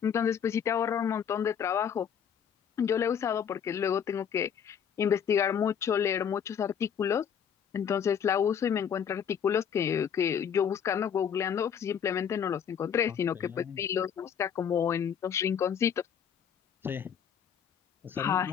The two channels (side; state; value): right; quieter; 8.0 dB